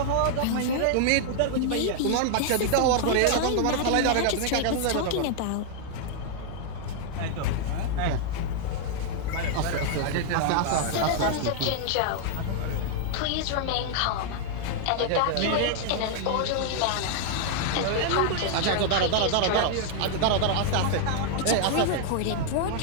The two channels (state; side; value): different; both; correlation 0.00